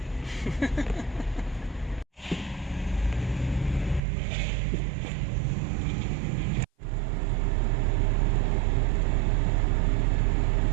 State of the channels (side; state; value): left; drops out; at 4.0 s